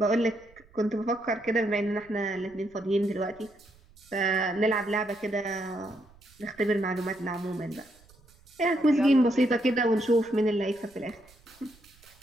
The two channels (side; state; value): right; noise; rumble, 28 dB below the sound